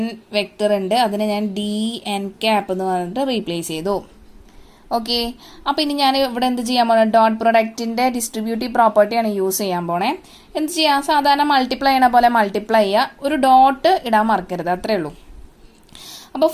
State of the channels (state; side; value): identical; both; correlation 1.00